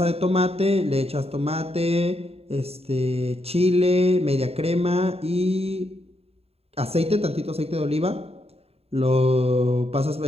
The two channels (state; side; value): late; left; 0.29 ms